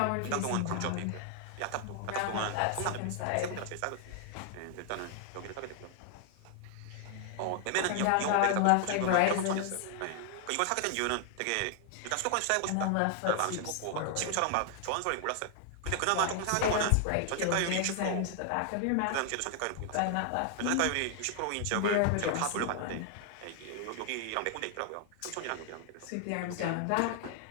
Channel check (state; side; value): different; both; correlation 0.00